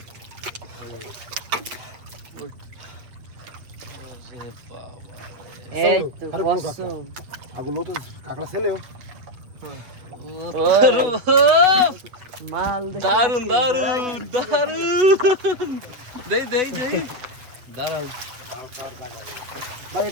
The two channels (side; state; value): left; late; 7.8 ms